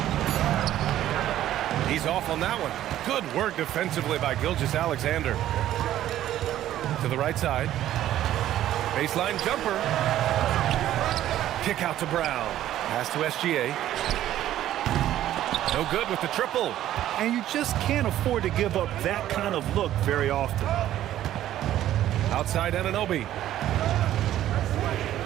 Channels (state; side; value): quieter; left; 12.7 dB